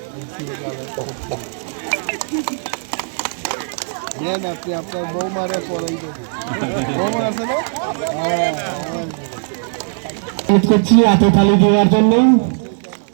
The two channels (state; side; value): silent; left; 67 dB below the other